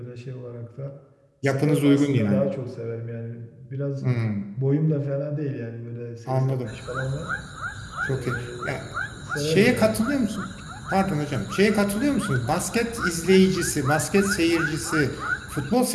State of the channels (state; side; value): identical; both; correlation 1.00